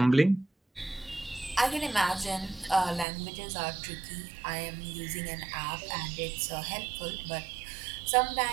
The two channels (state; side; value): drops out; left; at 3.1 s